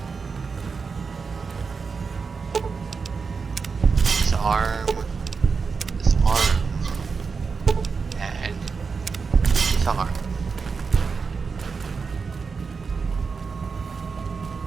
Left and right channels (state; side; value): quieter; left; 5.1 dB